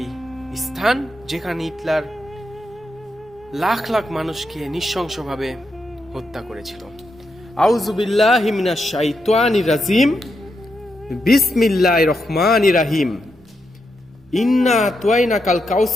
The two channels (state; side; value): normal; both; correlation 0.84